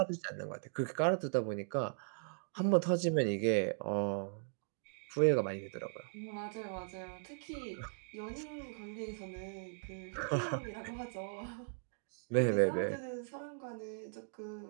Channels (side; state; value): left; silent; digital silence